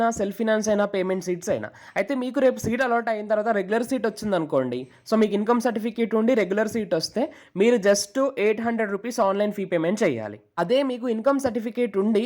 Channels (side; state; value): both; identical; correlation 1.00